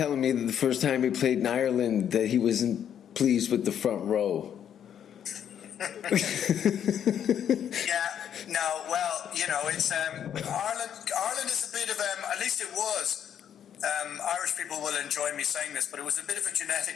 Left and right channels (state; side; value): quieter; right; 9.3 dB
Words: me that the first time he played in Ireland that he wasn't pleased with the front row. Yeah, no, well, it's Ireland is a bit of at least it was. Irish people will enjoy me saying this, but it was a bit of a